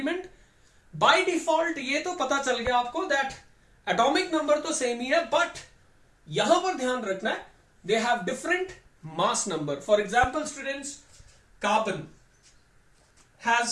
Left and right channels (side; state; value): both; identical; correlation 1.00